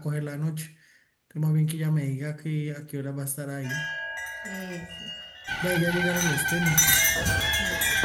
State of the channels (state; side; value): identical; both; correlation 1.00